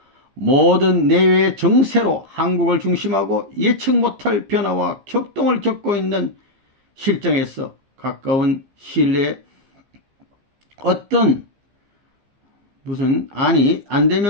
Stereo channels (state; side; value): late; left; 15 ms